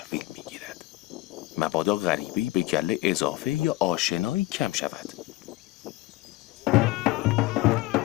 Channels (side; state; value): right; quieter; 19.0 dB